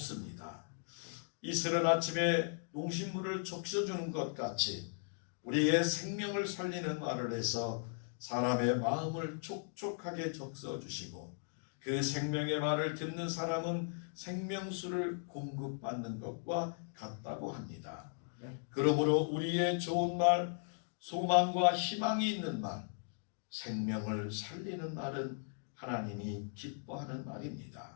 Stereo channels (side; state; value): right; silent; digital silence